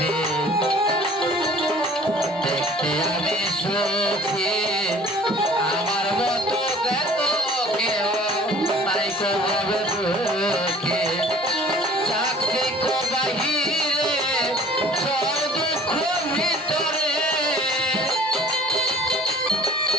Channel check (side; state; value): both; normal; correlation 0.50